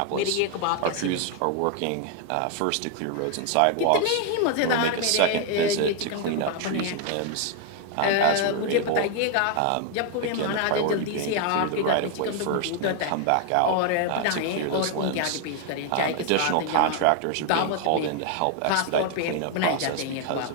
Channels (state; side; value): different; both; correlation 0.00